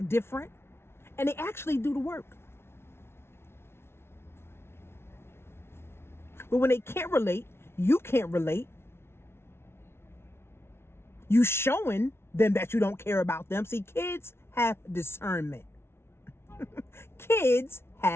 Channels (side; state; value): right; late; 0.12 ms